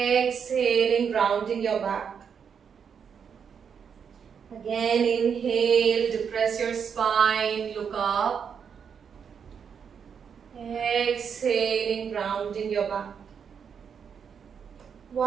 rounding your back. Again, inhale, depress your spine, look up. Exhaling, rounding your back.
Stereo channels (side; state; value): left; quieter; 7.0 dB